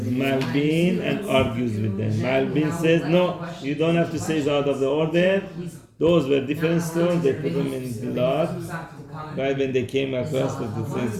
Malbin and argues with them. Malbin says, no, you don't have to say it's out of the order. Those were different stones. They put them in blood. Right when they came across,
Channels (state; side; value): identical; both; correlation 1.00